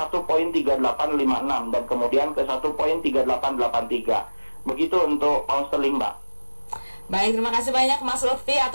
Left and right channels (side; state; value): both; inverted; correlation -1.00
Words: dan kemudian ke 1.3883. Begitu untuk pound sterling, Mbak. Baik, terima kasih banyak Mas Lutfi